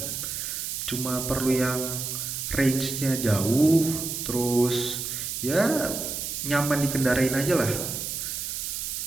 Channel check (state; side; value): noise; right; hiss, 4 dB below the sound